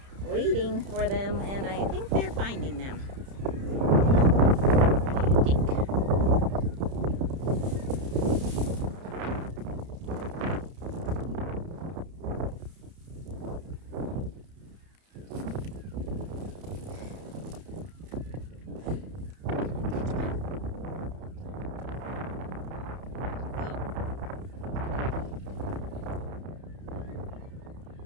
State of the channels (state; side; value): late; left; 31 ms